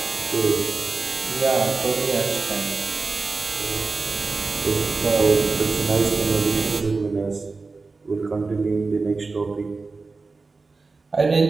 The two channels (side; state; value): left; quieter; 4.0 dB